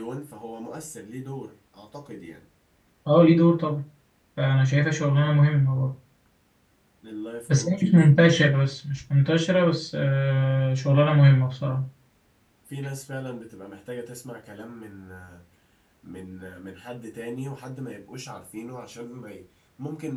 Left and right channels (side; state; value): both; identical; correlation 1.00